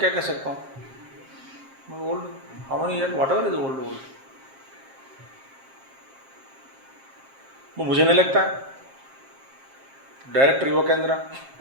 कह सकता हूँ, मैं old how many year what ever is old. वो मुझे नहीं लगता है. डायरेक्टर युवा केंद्र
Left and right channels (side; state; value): left; late; 7.5 ms